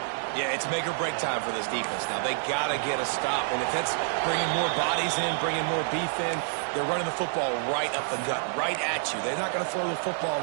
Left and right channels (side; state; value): left; silent; 59 dB below the other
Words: Yeah, it's make or break time for this defense. Now, they got to get a stop. And if that's bringing more bodies in, bringing more beef in, they're running the football right up the gut, right at you. They're not going to throw the football